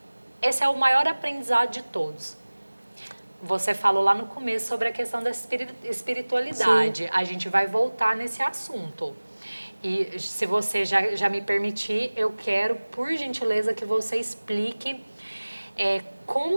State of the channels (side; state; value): both; inverted; correlation -1.00